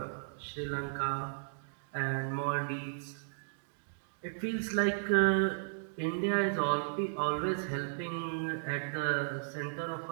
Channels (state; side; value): silent; left; digital silence